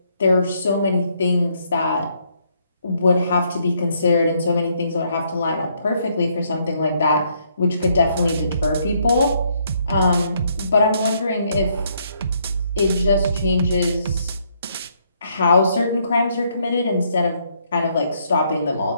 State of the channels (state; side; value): inverted; both; correlation -0.72